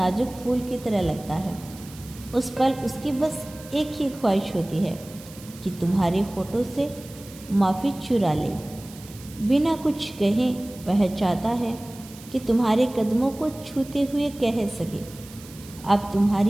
फूल की तरह लगता है। उस पल उसकी बस एक ही ख्वाहिश होती है कि तुम्हारे होठों से माफ़ी चुरा ले। बिना कुछ कहे वह चाहता है कि तुम्हारे कदमों को छूते हुए कह सके, अब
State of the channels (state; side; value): noise; right; hiss, 19 dB below the sound